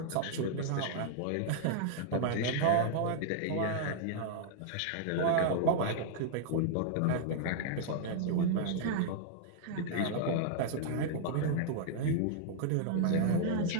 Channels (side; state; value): both; different; correlation -0.01